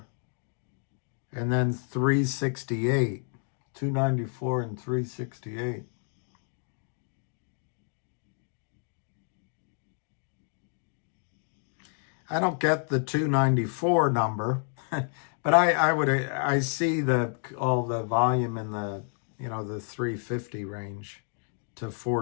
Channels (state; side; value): silent; right; 58 dB below the other